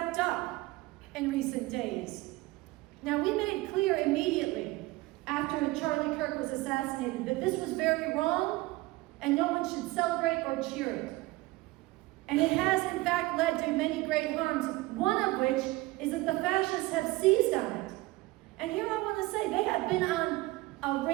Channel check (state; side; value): quieter; left; 20.4 dB